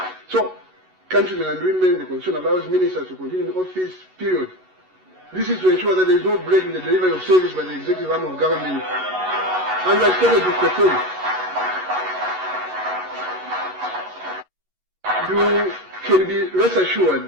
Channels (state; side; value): late; left; 11 ms